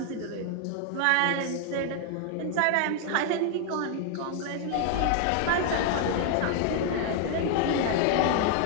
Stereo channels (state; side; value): different; both; correlation 0.00